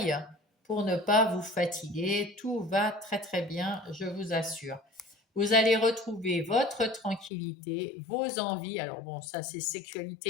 pour ne pas vous fatiguer. Tout va très très bien, je vous assure. Vous allez retrouver votre tranquillité, vos envies. Alors bon, ça c'est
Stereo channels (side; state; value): right; drops out; at 7.3 s